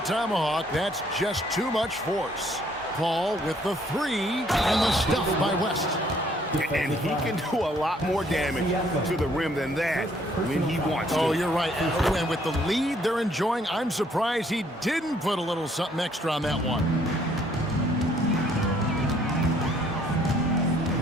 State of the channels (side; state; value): both; normal; correlation 0.64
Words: tomahawk. That's just too much force. Paul with the three, and the stuff by West. And he can do a lot more damage to the rim than that when he wants to. Oh, you're right. And with the lead they're enjoying, I'm surprised he didn't put a little something extra on that one.